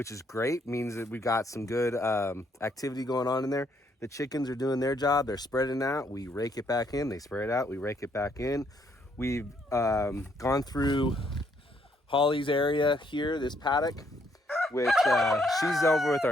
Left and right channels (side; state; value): both; normal; correlation 0.71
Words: is great. Means that we've got some good activity going on in there. The chickens are doing their job. They're spreading out. We rake it back in. They spread out. We rake it back in. We've gone through Holly's area here, this paddock, which she's over with